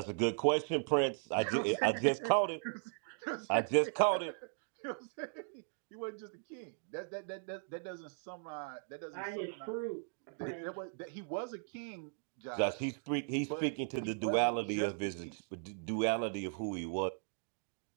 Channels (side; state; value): left; silent; digital silence